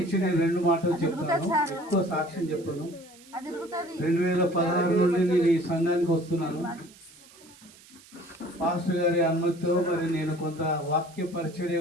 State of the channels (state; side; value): noise; right; hiss, 24 dB below the sound